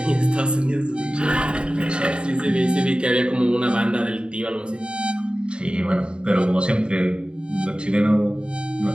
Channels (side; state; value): left; late; 0.052 ms